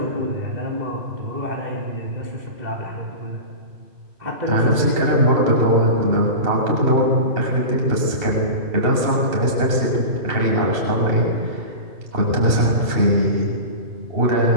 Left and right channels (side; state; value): left; late; 2.7 ms